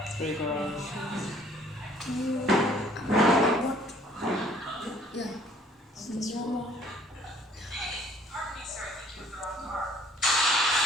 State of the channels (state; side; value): normal; both; correlation 0.58